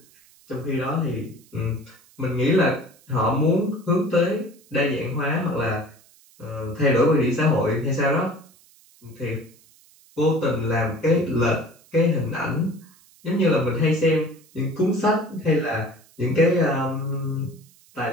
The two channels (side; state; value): right; noise; hiss, 28 dB below the sound